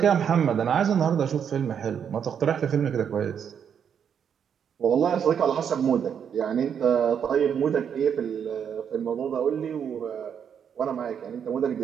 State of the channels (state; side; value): quieter; left; 7.9 dB